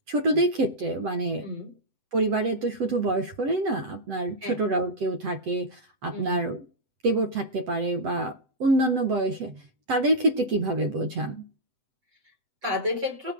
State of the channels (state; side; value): late; left; 7.9 ms